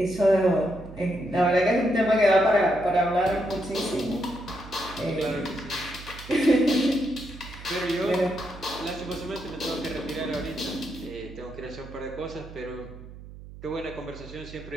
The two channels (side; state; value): right; noise; hum, 15 dB below the sound